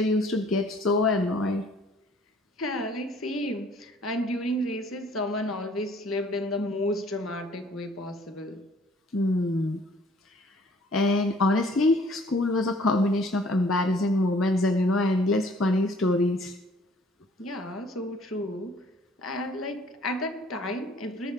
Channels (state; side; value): normal; both; correlation 0.57